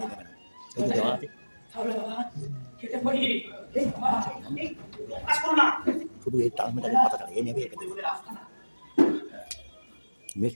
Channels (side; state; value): both; inverted; correlation -1.00